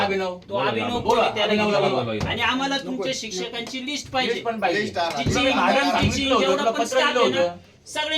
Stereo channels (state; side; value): identical; both; correlation 1.00